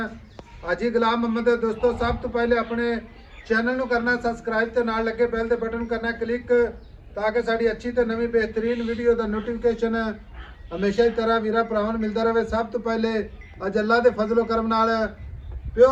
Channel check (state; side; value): identical; both; correlation 1.00